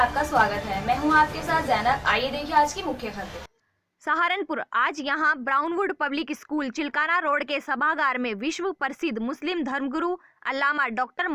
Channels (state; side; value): identical; both; correlation 1.00